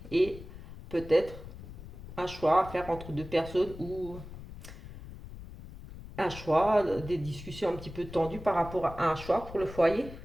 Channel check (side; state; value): left; noise; rumble, 13 dB below the sound